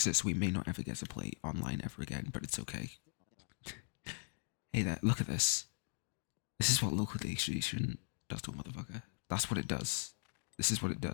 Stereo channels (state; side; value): silent; right; digital silence